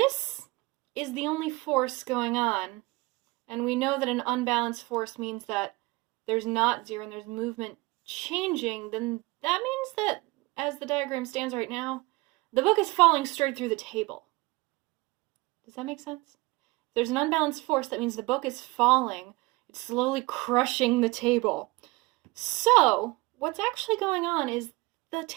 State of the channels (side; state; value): left; quieter; 23.2 dB